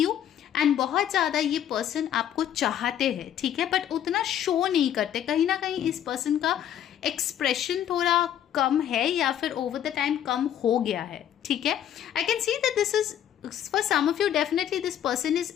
and बहुत ज़्यादा ये पर्सन आपको चाहते हैं, ठीक है, बट उतना शो नहीं करते। कहीं ना कहीं इस पर्सन का एक्सप्रेशन थोड़ा कम है या फिर ओवर द टाइम कम हो गया है, ठीक है। I can see that this is for some of you, definitely this person is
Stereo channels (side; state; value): right; quieter; 10.3 dB